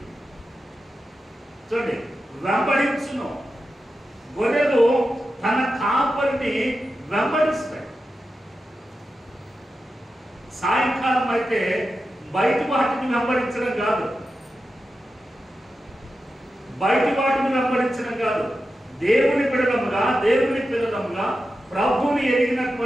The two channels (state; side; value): normal; both; correlation 0.91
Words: చూడండి, వెంబడించును. గొర్రెలు తన కాపరిని వెంబడిస్తాయి. సాయంకాలం అయితే బయట వాటిని వెంబడించడం కాదు, దేవుని పిల్లలముగా ప్రభువుని